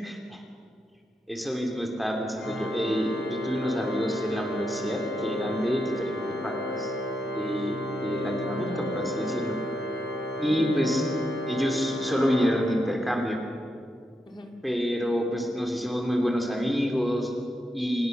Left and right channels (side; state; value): both; normal; correlation 0.83